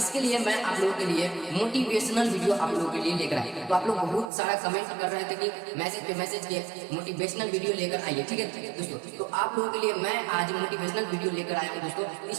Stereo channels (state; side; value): drops out; left; at 4.3 s